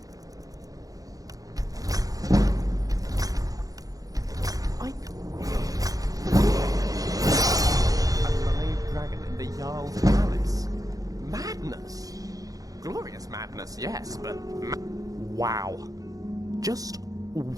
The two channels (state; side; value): late; left; 0.17 ms